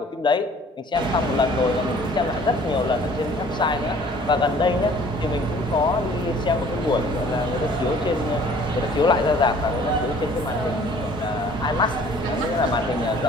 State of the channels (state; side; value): normal; both; correlation 0.53